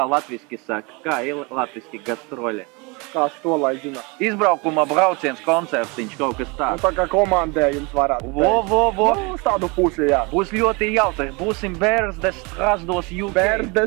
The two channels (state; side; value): quieter; left; 28.9 dB